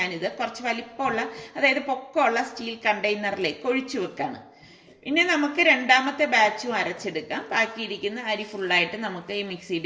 കുറച്ച് വലിപ്പമുള്ള, അതായത് പൊക്കമുള്ള സ്റ്റീൽ കണ്ടെയ്നറിലേക്ക് ഒഴിച്ചു വെക്കാണ്. ഇനി നമുക്ക് രണ്ടാമത്തെ ബാച്ചും അരച്ചെടുക്കാം. ബാക്കിയിരിക്കുന്ന അരി ഫുള്ളായിട്ട് നമുക്ക് ഈ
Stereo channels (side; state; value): both; identical; correlation 1.00